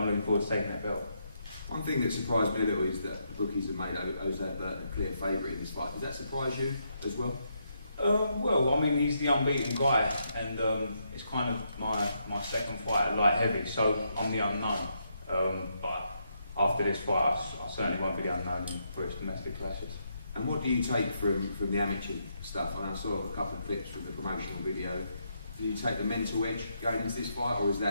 looking forward to taking that belt. One thing that surprised me a little is that the bookies have made Jose Burton a clear favourite in this fight. Does that surprise you as well? Well, I mean, he's the unbeaten guy, and it's kind of my second fight at light heavy, so I'm the unknown. But after this fight, I certainly won't be the unknown for his domestic clashes. And what do you take from the amateur stuff? I saw a couple of clips from the promotional video. Do you take the mental edge going into this fight, or is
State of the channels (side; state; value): both; inverted; correlation -0.78